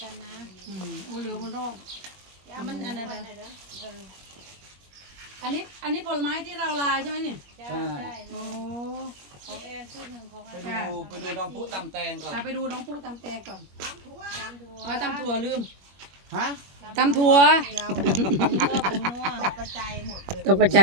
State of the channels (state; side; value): late; left; 21 ms